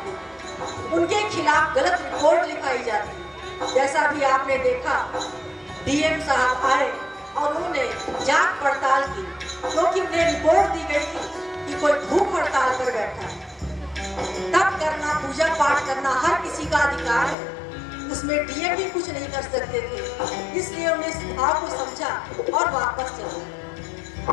उनके खिलाफ गलत रिपोर्ट लिखाई जाती। जैसा भी आपने देखा, डीएम साहब आए और उन्होंने जांच पड़ताल की, क्योंकि उन्हें रिपोर्ट दी गई थी कि कोई भूख हड़ताल पर बैठा है। तप करना, पूजा पाठ करना हर किसी का अधिकार है, उसमें डीएम भी कुछ नहीं कर सकते थे, इसलिए उन्हें इस भाव को समझा और वापस चले।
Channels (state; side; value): drops out; right; at 17.4 s